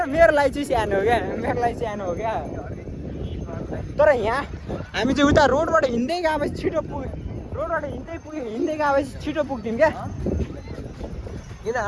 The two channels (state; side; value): identical; both; correlation 1.00